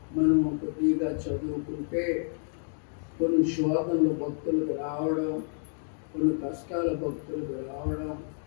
మనం కొద్దిగా చదువుకుంటే కొన్ని శోధనలు భక్తులకు రావడం, కొన్ని కష్టాల భక్తులకు రావడం,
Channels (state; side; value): silent; right; 58 dB below the other